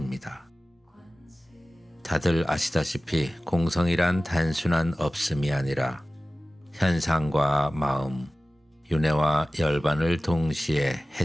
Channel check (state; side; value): normal; both; correlation 0.97